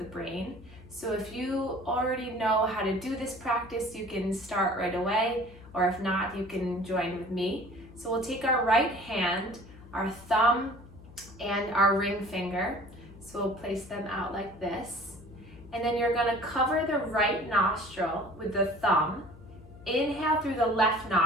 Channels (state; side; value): noise; left; hum, 20 dB below the sound